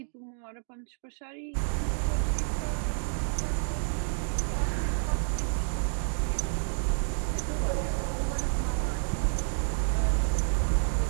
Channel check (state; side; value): silent; left; 58 dB below the other